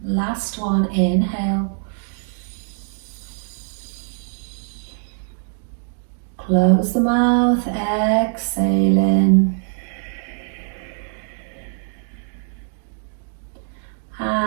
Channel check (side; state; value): left; silent; digital silence